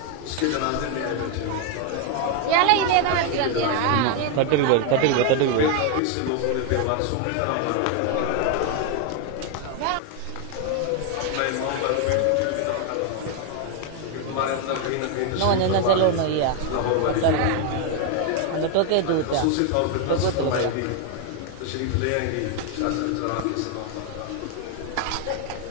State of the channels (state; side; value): different; both; correlation 0.01